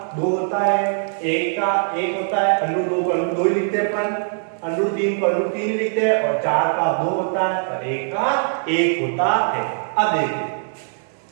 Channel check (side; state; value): left; silent; digital silence